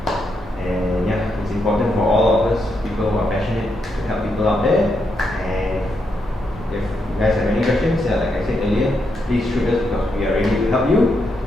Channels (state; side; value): normal; both; correlation 0.81